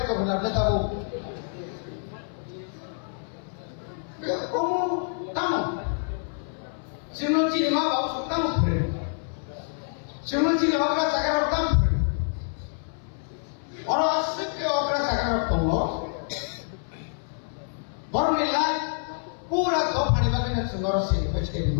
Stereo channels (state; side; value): silent; right; 60 dB below the other